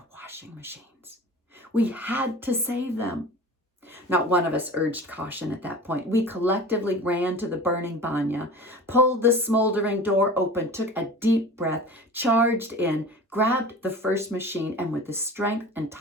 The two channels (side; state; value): both; normal; correlation 0.37